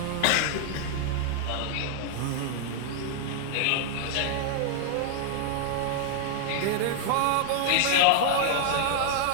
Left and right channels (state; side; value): different; both; correlation 0.00